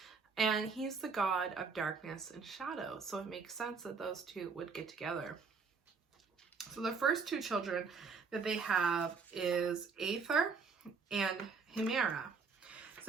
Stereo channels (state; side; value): quieter; left; 5.0 dB